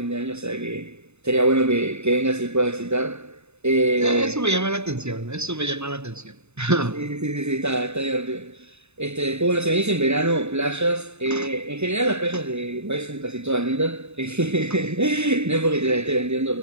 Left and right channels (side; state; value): left; late; 0.81 ms